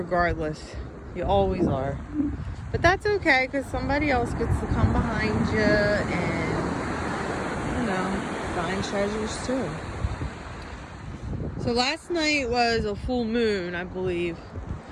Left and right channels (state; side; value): identical; both; correlation 1.00